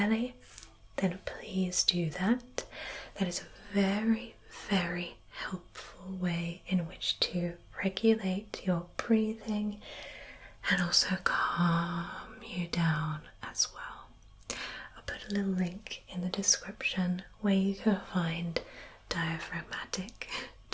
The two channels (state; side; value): identical; both; correlation 1.00